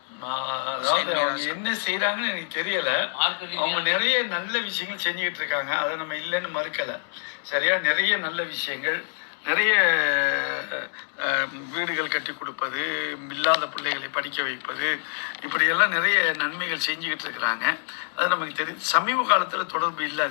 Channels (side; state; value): right; silent; digital silence